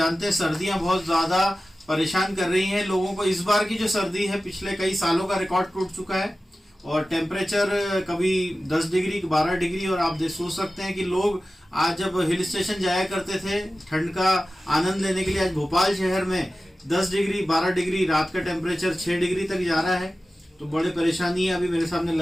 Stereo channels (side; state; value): both; normal; correlation 0.95